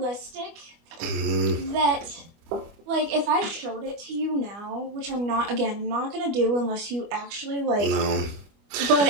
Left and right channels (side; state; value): left; late; 25 ms